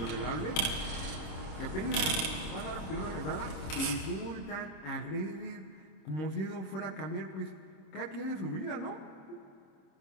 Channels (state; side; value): late; right; 26 ms